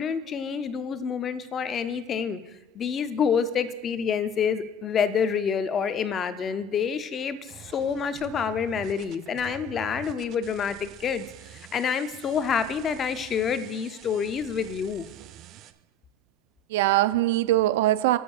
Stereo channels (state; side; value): normal; both; correlation 0.37